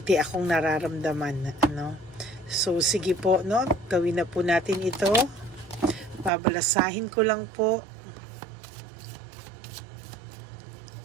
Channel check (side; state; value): left; drops out; at 6.3 s